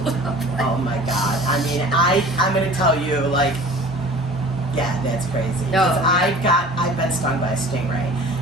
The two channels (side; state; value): both; normal; correlation 0.44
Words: up. Oh my God! I mean, I'm gonna tell you, like. Yeah, that's crazy. No. I've been stung by a stingray.